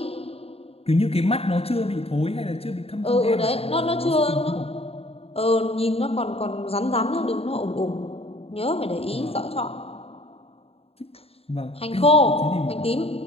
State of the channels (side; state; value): right; late; 0.28 ms